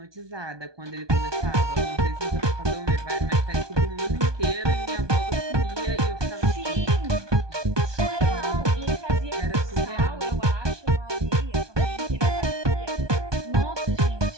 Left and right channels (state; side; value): late; left; 1.2 ms